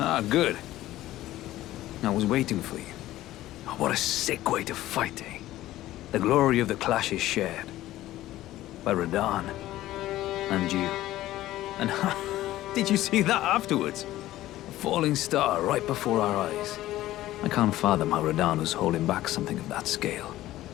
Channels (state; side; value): quieter; right; 15.2 dB